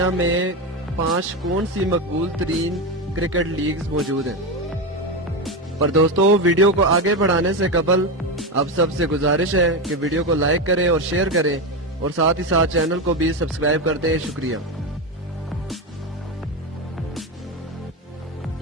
میں 5 کون سی مقبول ترین کرکٹ لیگز موجود ہیں۔ پر دوستو، ویڈیو کو آگے بڑھانے سے قبل آپ سب سے گزارش ہے کہ ویڈیو کو لائک کریں اور شیئر کریں، اور ساتھ ہی ساتھ چینل کو بھی سبسکرائب کر دیں۔ شکریہ۔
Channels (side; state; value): both; normal; correlation 0.15